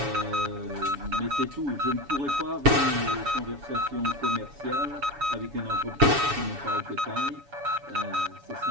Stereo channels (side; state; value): left; late; 7.1 ms